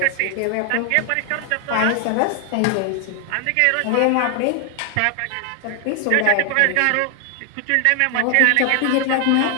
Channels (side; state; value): both; different; correlation 0.01